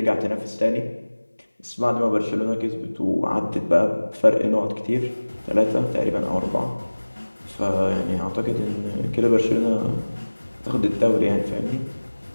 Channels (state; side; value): inverted; both; correlation -1.00